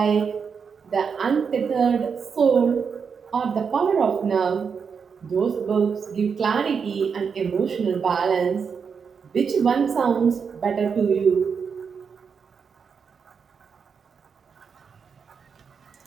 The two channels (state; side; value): quieter; left; 6.1 dB